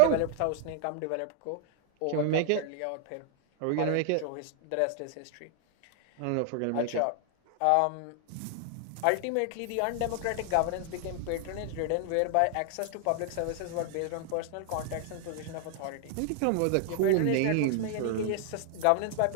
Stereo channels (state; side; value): different; both; correlation 0.00